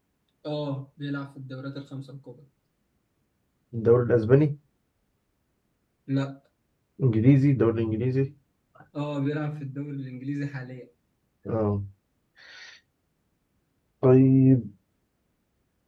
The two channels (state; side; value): identical; both; correlation 1.00